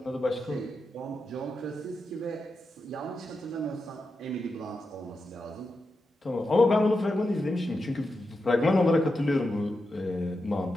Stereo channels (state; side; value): normal; both; correlation 0.88